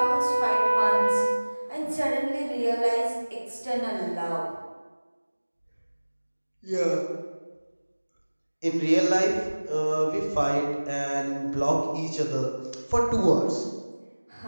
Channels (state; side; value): inverted; both; correlation -1.00